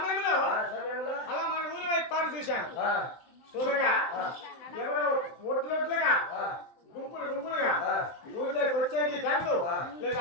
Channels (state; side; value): late; right; 23 ms